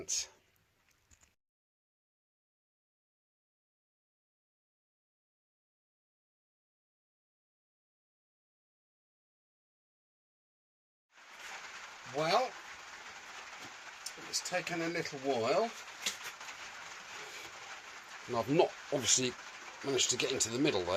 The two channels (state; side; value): identical; both; correlation 1.00